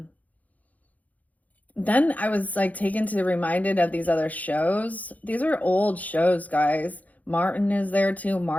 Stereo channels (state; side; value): late; right; 0.076 ms